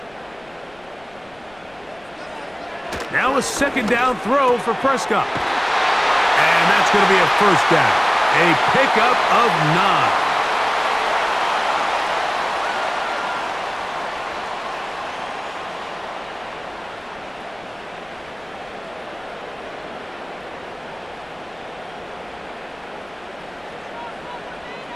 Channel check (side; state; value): left; noise; rumble, 28 dB below the sound